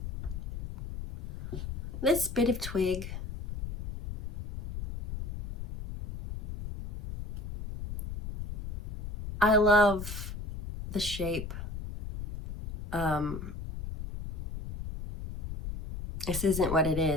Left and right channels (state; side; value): noise; left; rumble, 7 dB below the sound